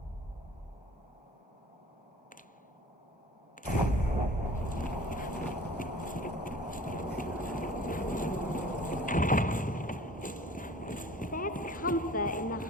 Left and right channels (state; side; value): normal; both; correlation 0.46